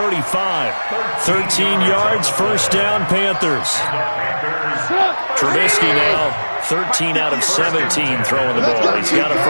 13 yards, 1st down, Panthers. Trubisky now, 13 out of 17 throwing the ball. He's got a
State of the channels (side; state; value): both; inverted; correlation -1.00